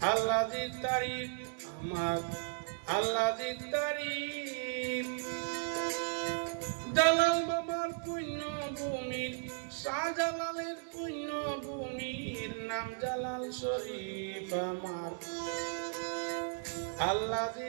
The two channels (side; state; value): left; silent; digital silence